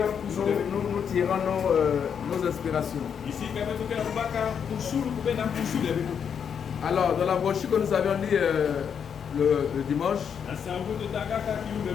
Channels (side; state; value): right; quieter; 7.4 dB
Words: tirons nos inspirations. Alors, dans la brochure que nous avions lu le dimanche,